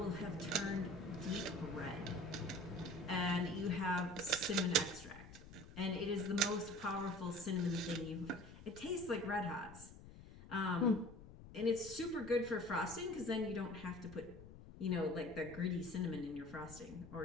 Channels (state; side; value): noise; left; rumble, 16 dB below the sound